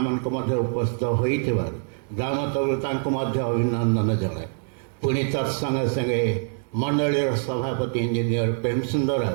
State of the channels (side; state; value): left; silent; digital silence